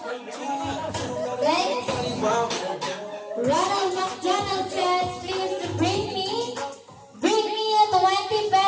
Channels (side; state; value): both; identical; correlation 1.00